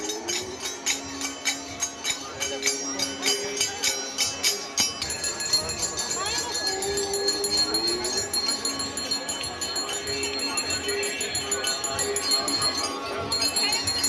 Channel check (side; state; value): both; identical; correlation 1.00